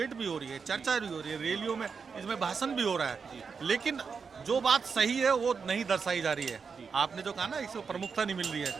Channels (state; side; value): quieter; left; 5.6 dB